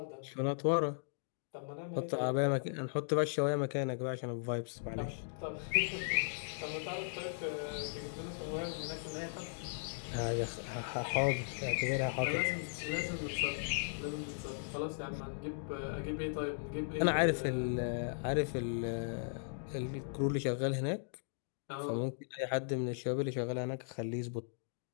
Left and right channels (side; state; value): right; silent; digital silence